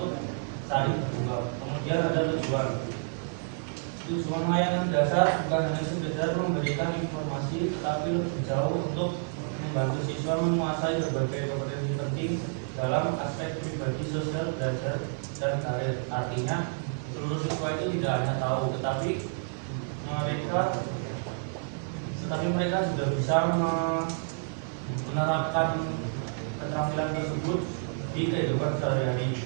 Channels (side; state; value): left; silent; 58 dB below the other